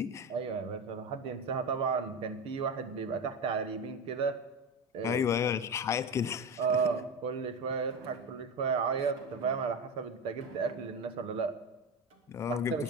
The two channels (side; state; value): both; normal; correlation 0.20